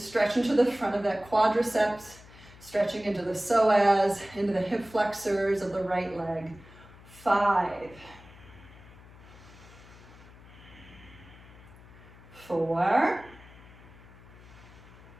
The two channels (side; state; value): left; noise; hum, 21 dB below the sound